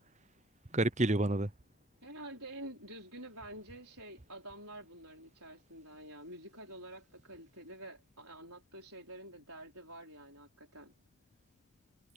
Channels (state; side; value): normal; both; correlation 0.55